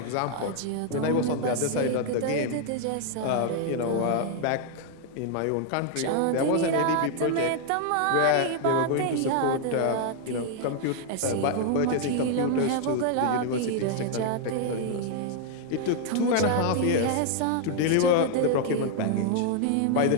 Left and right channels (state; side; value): different; both; correlation 0.00